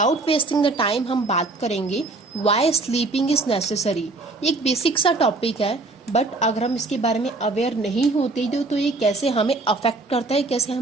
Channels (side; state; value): left; quieter; 3.3 dB